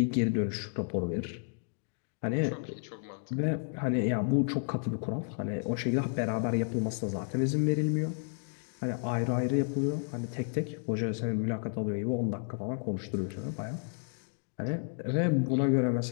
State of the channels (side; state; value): right; silent; 57 dB below the other